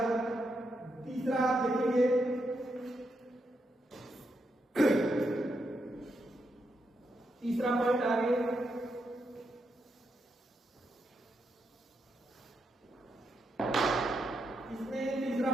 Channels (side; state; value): both; normal; correlation 0.82